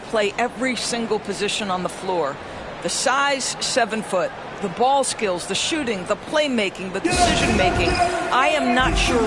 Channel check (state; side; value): identical; both; correlation 1.00